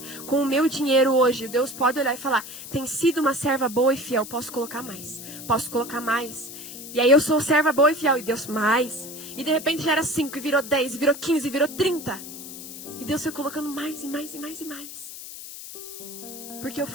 Com o meu dinheiro hoje, Deus pode olhar e falar, tem sido uma serva boa e fiel, posso colocar mais. Posso colocar mais. E aí eu sou serva boa e fiel, e Deus mais. E de repente já era 5, e virou 10, e virou 15, e virou 30. E Deus foi colocando mais, e mais, e mais, e mais. Porque eu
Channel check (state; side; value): noise; left; hiss, 12 dB below the sound